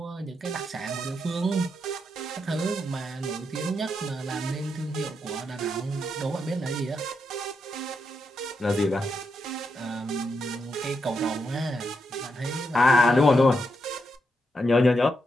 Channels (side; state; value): both; normal; correlation 0.83